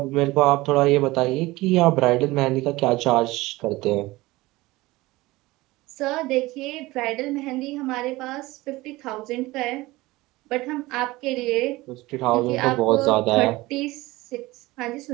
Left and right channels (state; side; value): quieter; left; 20.0 dB